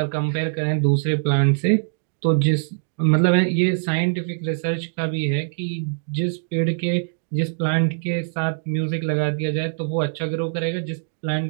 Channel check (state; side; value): silent; left; digital silence